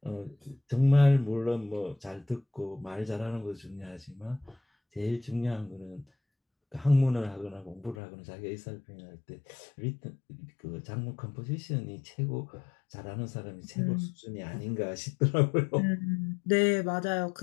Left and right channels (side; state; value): right; drops out; at 8.0 s